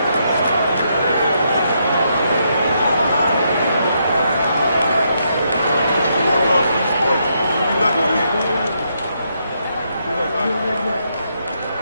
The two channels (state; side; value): inverted; both; correlation -0.78